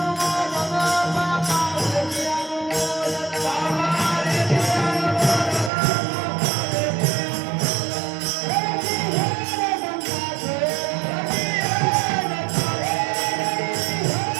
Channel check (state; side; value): drops out; left; at 5.7 s